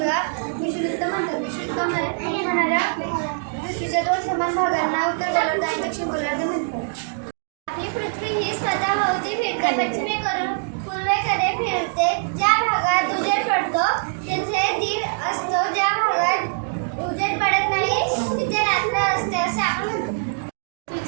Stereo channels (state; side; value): silent; left; digital silence